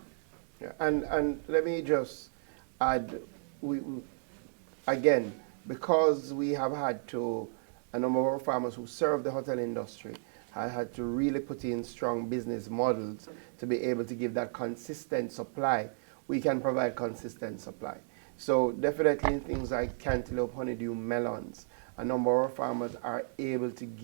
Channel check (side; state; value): left; silent; digital silence